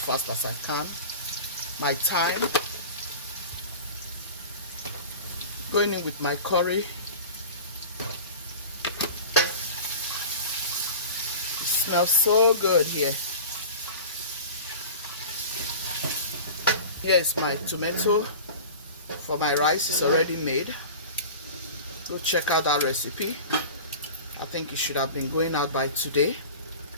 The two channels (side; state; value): both; inverted; correlation -0.35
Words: fast as I can. My thyme. Going in with my curry. It smells so good here. Here's my tomato for my rice. It's already made. Go check out that recipe. I think it should have been going out by today.